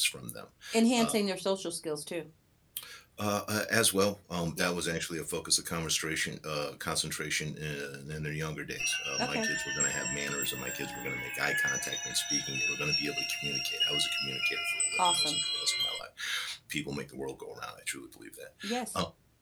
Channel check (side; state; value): both; identical; correlation 1.00